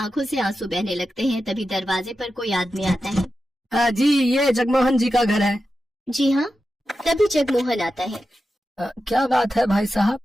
से आंसू बहने लगते हैं। तभी दरवाजे पर कोई आदमी आता है। जी, ये जगमोहन जी का घर है। जी हाँ। तभी जगमोहन आता है। क्या बात है भाई साहब?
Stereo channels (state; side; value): normal; both; correlation 0.91